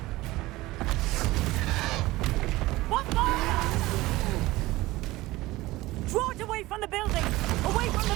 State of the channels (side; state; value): left; quieter; 18.8 dB